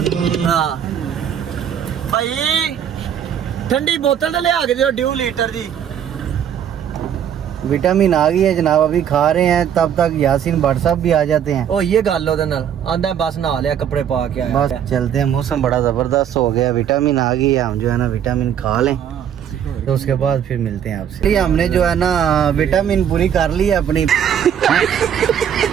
हाँ भाई ठंडी बोतल ले आके दो 2 लीटर दी। विटामिन आ गई है जनाब, अभी खा रहे हैं, तब तक यासीन भट्ट साहब भी आ जाते हैं। ओ ये गल ओदे नाल आंदा बस नहा लिया, कपड़े पा के आया। बस चलते हैं, मौसम बड़ा ज़बरदस्त हो गया, विटामिन आ गई है। हम जो है ना विटामिन खा लें तो उसके बाद फिर मिलते हैं आपसे। हमने जो है ना विटामिन पूरी कर ली है अपनी।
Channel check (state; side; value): quieter; left; 9.1 dB